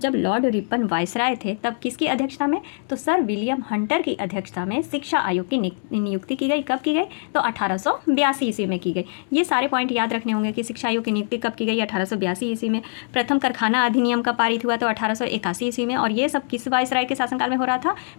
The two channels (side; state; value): right; silent; digital silence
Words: लॉर्ड रिपन वायसराय थे तब किसकी अध्यक्षता में? तो सर विलियम हंटर की अध्यक्षता में शिक्षा आयोग की नियुक्ति की गई। कब की गई? तो 1882 ईस्वी में की गई। ये सारे पॉइंट याद रखने होंगे कि शिक्षा आयोग की नियुक्ति कब की गई? 1882 ईस्वी में। प्रथम कारखाना अधिनियम कब पारित हुआ? तो 1881 ईस्वी में। और ये सब किस वायसराय के शासनकाल में हो रहा था?